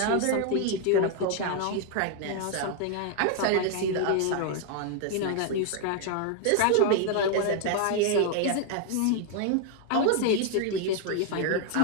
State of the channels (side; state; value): both; different; correlation 0.00